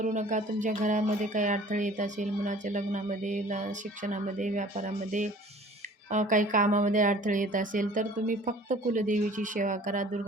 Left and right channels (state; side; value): normal; both; correlation 0.49